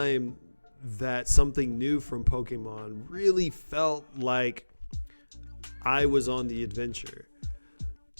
that something new from Pokemon really felt like I was on the adventure.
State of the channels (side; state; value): both; inverted; correlation -1.00